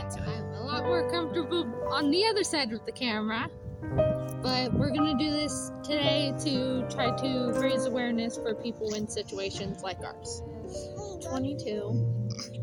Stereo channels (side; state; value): both; identical; correlation 1.00